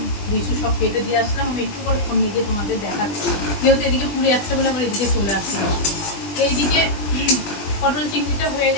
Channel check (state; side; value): late; right; 20 ms